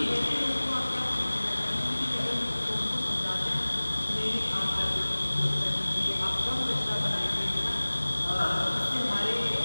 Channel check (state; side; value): inverted; both; correlation -1.00